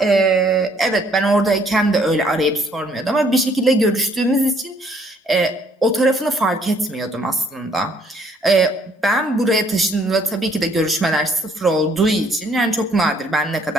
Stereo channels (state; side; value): normal; both; correlation 0.64